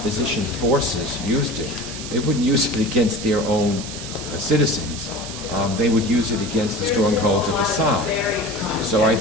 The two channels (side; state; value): right; noise; hiss, 10 dB below the sound